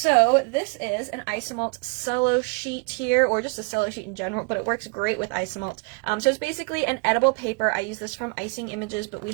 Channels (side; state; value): left; quieter; 30.9 dB